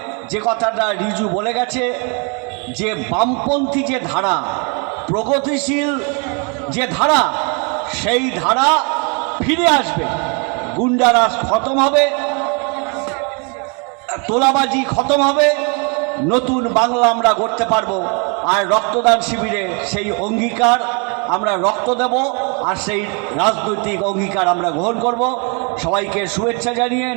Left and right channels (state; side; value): quieter; left; 34.9 dB